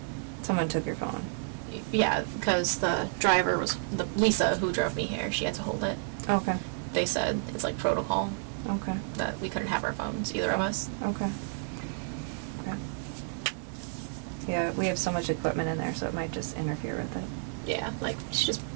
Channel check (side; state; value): left; silent; digital silence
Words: Someone took your phone. yeah, because the driver was Lisa who drove me here. She had to hold it. Okay. They said it's like protocol Okay. that we couldn't have our phones, either of us. Okay. Okay. Yeah, we have so much equipment in there, so it might just interfere with it. Yeah, like she just